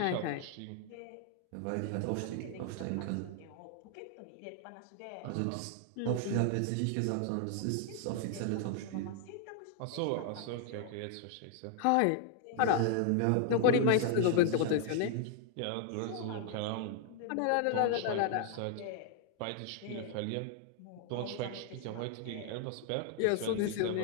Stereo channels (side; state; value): both; different; correlation 0.00